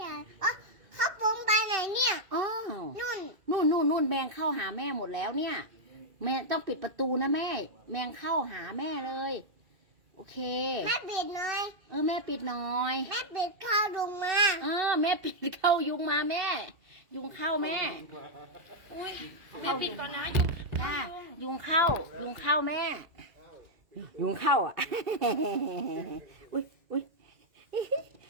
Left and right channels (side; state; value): left; late; 2.7 ms